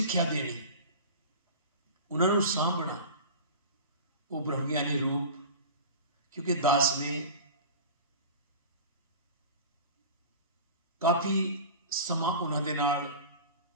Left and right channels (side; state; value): both; inverted; correlation -0.35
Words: देनी, उन्होंने सांभना, वो ब्रह्मज्ञानी रूप। क्योंकि दास ने काफ़ी समा उन्होंने नाल